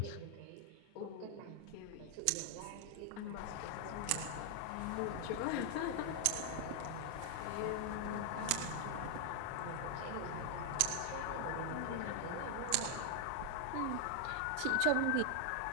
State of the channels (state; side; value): different; both; correlation 0.00